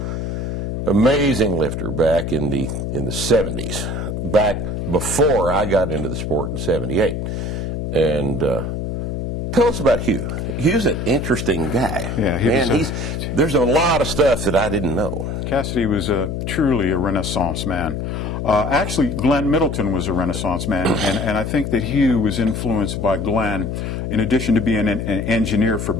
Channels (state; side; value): noise; left; hum, 3 dB below the sound